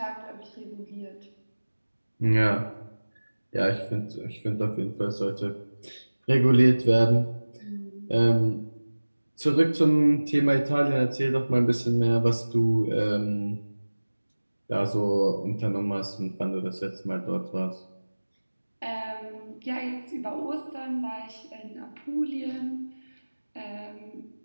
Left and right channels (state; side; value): inverted; both; correlation -1.00